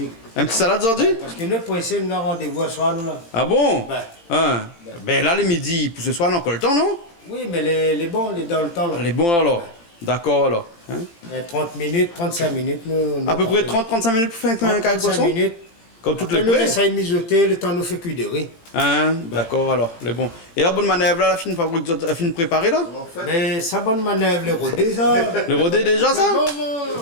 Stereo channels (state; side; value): late; right; 18 ms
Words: Un petit salade aujourd'hui? Parce que nous, pour essayer, nous avons rendez-vous à soir, nous là. Ah bon? Ben. Hein. Ben là, le midi, pour ce soir, on a encore le temps, non? Oui, mais les bons, les dans le temps. Là. Les bons alors. D'accord alors. Hein? 30 minutes, 35 minutes. Nous À peu près 30-35 minutes pour faire un carré de 35 poisson? minutes. Comme toutes Après, les nous prêts? essayons de mijoter, le temps nous fait cuire de riz. Hein? D'accord alors, les bons. Et la bonne manœuvre là, la fine fabrique, la fine préparée là? Mais ça bonne manœuvre, le rodé, ça. Le rodé déjà ça?